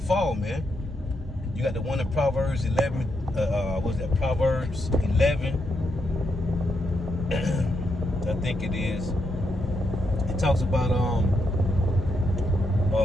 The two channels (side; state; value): both; normal; correlation 0.81